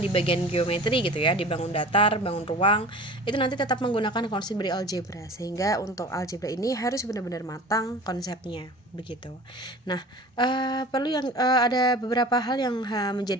bagian geometri gitu ya, di bangun datar, bangun ruang, itu nanti tetap menggunakan konsep dari algebra, sehingga untuk algebra ini harus benar-benar matang konsepnya begitu. Nah, perlu yang ada beberapa hal yang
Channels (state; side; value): normal; both; correlation 0.40